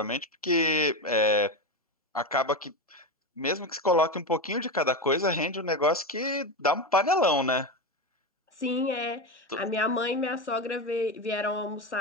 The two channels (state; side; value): normal; both; correlation 0.16